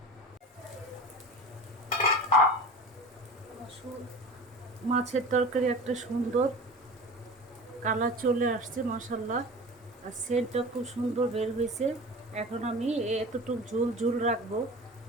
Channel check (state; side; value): normal; both; correlation 0.34